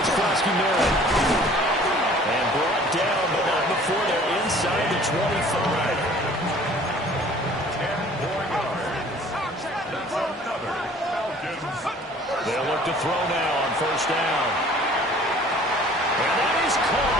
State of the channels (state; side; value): normal; both; correlation 0.51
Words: Krosky-Merritt. And brought down, but not before they're inside the 25. 10 more yards. That's another Falcons. They'll look to throw now on first down. And that is